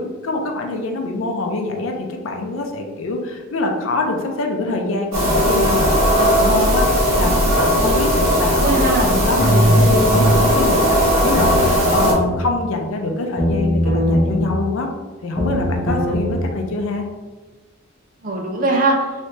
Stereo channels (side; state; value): both; normal; correlation 0.35